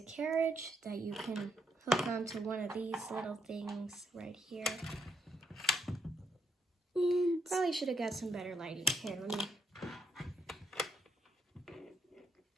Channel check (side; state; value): both; normal; correlation 0.76